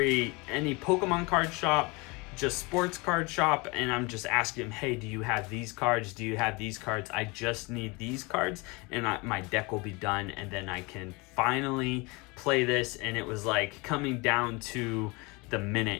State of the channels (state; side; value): quieter; right; 26.8 dB